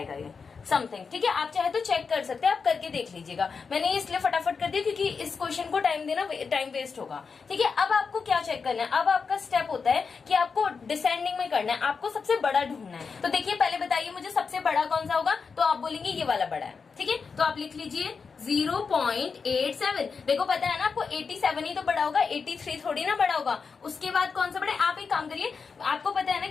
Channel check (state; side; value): quieter; right; 5.3 dB